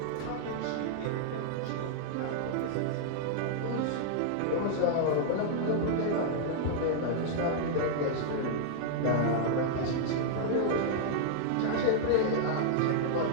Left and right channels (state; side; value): different; both; correlation -0.01